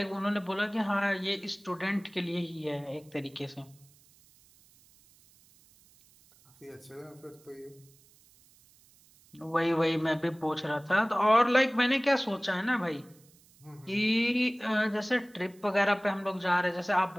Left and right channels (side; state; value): right; noise; hiss, 29 dB below the sound